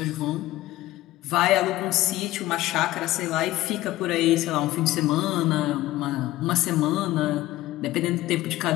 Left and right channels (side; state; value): right; quieter; 16.4 dB